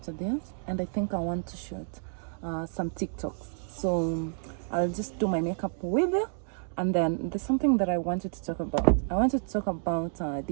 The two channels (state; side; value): silent; left; digital silence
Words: this, and I think I want to shoot some TikToks. So I'll just do my makeup with you. And then there's something that I wanted to talk about. I wanted to talk about